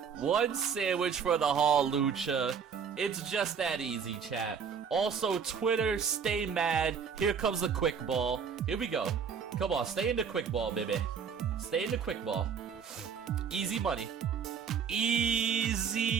one sandwich for the Hawlucha. It's just that easy, chat. Also, Twitter, stay mad. Here comes the quick ball. Here we go. Come on, stay in the quick ball, baby. Stay in the quick ball. Easy money.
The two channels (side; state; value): left; quieter; 6.7 dB